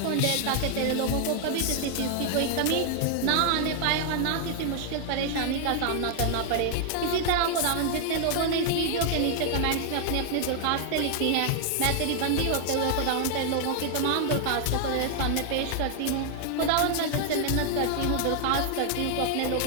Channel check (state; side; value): different; both; correlation 0.00